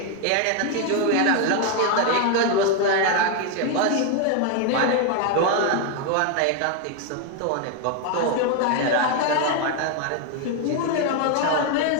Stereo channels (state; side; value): different; both; correlation 0.01